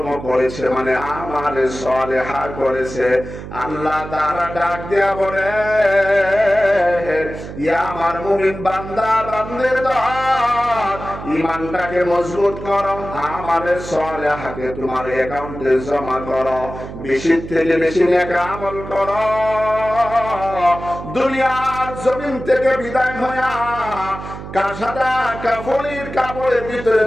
করেছে, মানে আমালে সালেহা করেছে, আল্লাহ তাআলা ডাক দেয়া বলে, ইয়া আমার মুমিন বান্দা বান্দের দল, ঈমানটাকে মজবুত করো, আমালে সালেহাকে তোমার অ্যাকাউন্টে জমা করো, বেশি থেকে বেশি নেক আমল করো। দুনিয়ার জমিন থেকে বিদায় হয়ে কাসাদা কাফনের কাপড়ের ভিতরে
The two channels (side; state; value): right; noise; hum, 11 dB below the sound